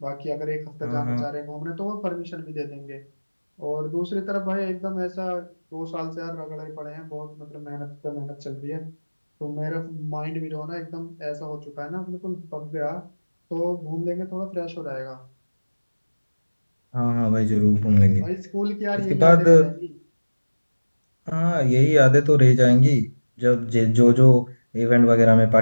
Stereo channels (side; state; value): both; inverted; correlation -1.00